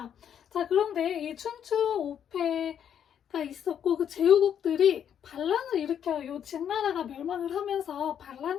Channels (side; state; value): right; quieter; 8.9 dB